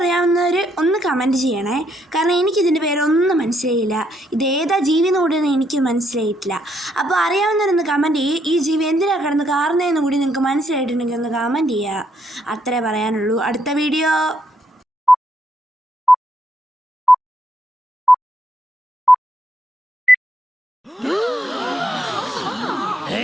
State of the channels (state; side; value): normal; both; correlation 0.75